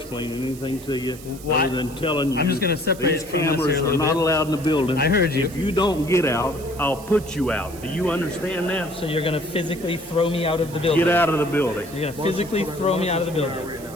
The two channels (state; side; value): noise; right; hiss, 18 dB below the sound